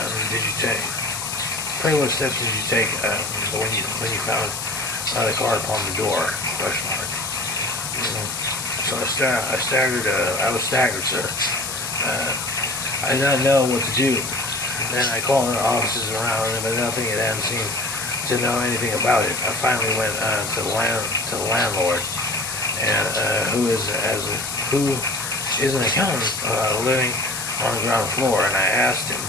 did you take? Pray, what steps did you take when you found the card upon the door? Question mark. So I was staggered, sir. I did not know what to do. Then I called the offices around, but nothing had hadn't seemed to know anything about it. I finally went to the landlord, and who is an accountant living on the ground floor, and I asked him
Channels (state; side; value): noise; left; hiss, 5 dB below the sound